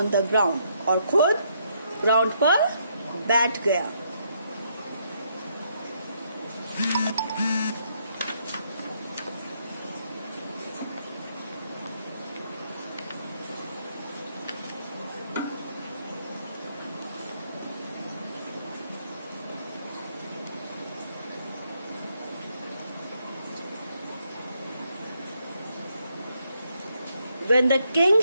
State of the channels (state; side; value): inverted; both; correlation -0.74